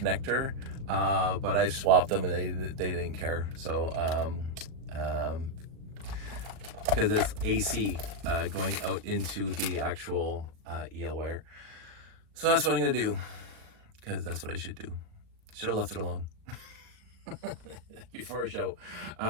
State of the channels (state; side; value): late; left; 38 ms